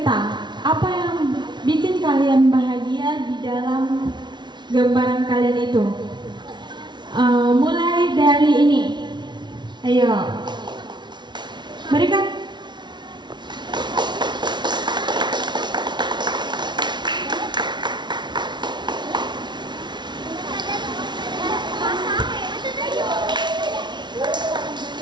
apa yang bikin kalian bahagia di dalam gambaran kalian itu. Mulai dari ini, ayo, berikan.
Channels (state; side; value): late; left; 0.21 ms